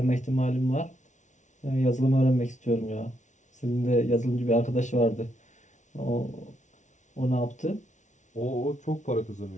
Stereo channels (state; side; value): late; right; 0.36 ms